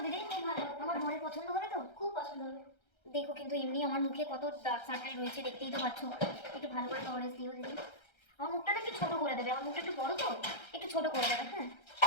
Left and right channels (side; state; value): right; late; 1.3 ms